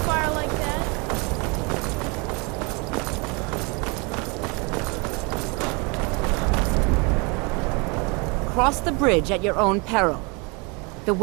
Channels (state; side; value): quieter; left; 30.0 dB